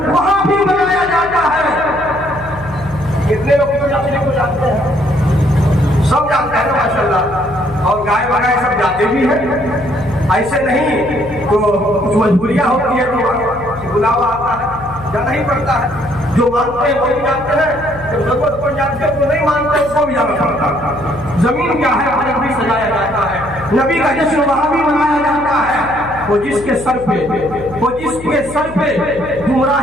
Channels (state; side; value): noise; left; hum, 16 dB below the sound